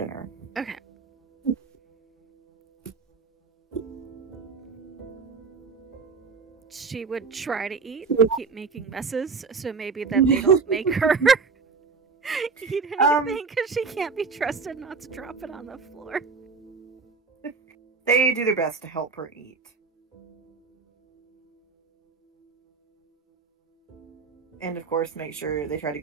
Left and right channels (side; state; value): left; quieter; 4.9 dB